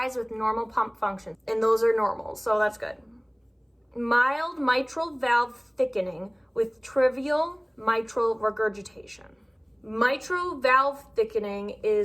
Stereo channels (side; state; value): both; identical; correlation 1.00